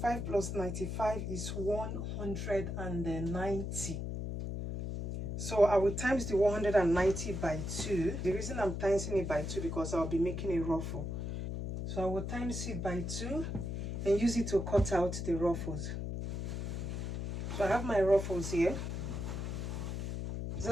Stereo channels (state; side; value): noise; left; hum, 4 dB below the sound